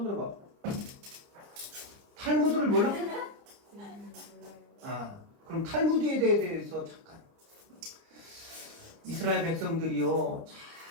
들어봐. 탈무드를 몰라? 그럼 탈무드에 대해서 잠깐. 이스라엘 백성들이요,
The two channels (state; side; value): late; left; 30 ms